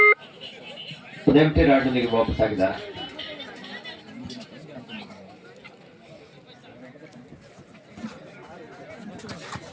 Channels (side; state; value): both; identical; correlation 1.00